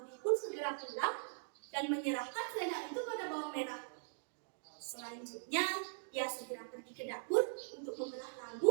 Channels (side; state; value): left; silent; digital silence